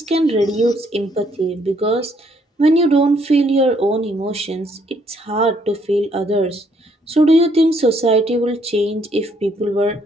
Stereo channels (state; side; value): normal; both; correlation 0.69